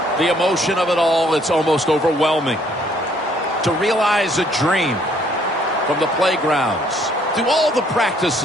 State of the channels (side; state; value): both; normal; correlation 0.64